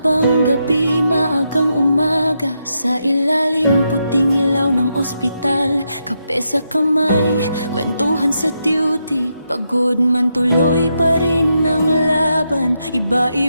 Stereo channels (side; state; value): both; inverted; correlation -0.82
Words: gabi, maagang umaga, sa ilalim puting ilaw ng ospital. Kape sa kamay, kwentuhan sa duty, pagod man tuloy pa rin ang laban.